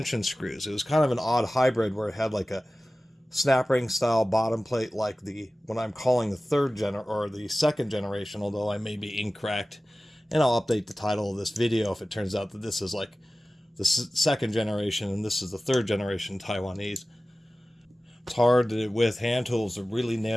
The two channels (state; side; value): normal; both; correlation 0.96